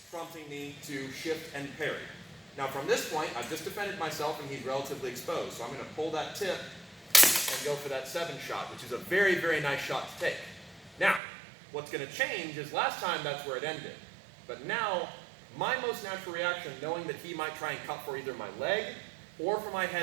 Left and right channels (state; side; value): drops out; left; at 11.2 s